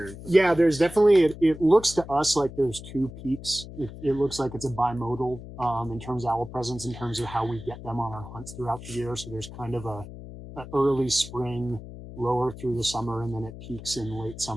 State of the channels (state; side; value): noise; left; hum, 13 dB below the sound